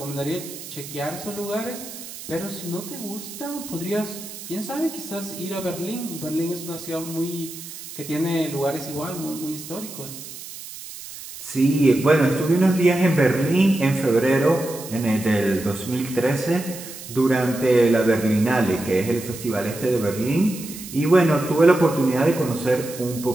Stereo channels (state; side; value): noise; right; hiss, 13 dB below the sound